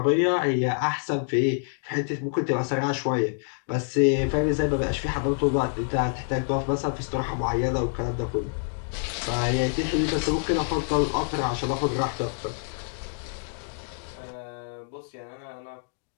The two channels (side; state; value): right; silent; digital silence